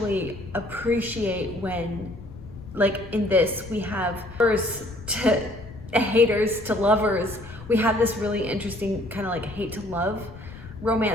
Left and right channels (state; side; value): noise; left; rumble, 16 dB below the sound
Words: appreciate when, like in this, we have lovers to haters to lovers. We have this really interesting kind of like hate to love